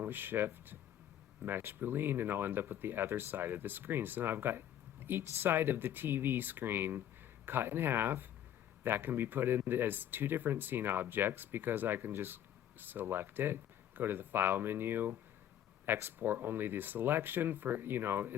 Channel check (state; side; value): quieter; right; 10.8 dB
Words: with shift, mesh Boolean, and I'll end up with the other side of the screen. So now I've got each side of the TV screen cut in half. That can be put in as 2 different scene objects because I can just select it, go to the file menu, export only the selection for,